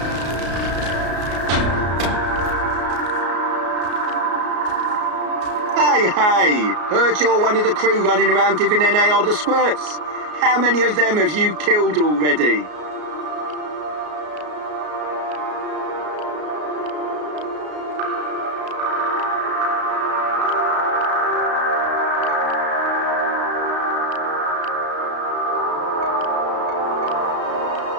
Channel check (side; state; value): left; late; 33 ms